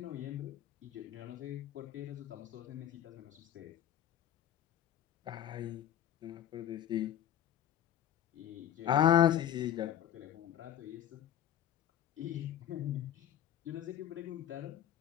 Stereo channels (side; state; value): right; quieter; 10.8 dB